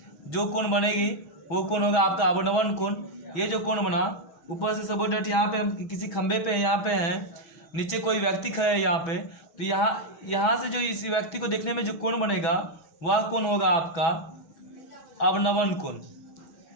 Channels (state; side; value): late; right; 6.1 ms